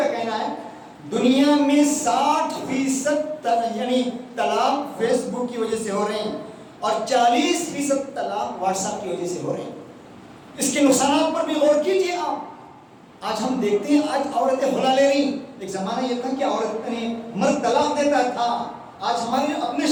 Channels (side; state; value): both; identical; correlation 1.00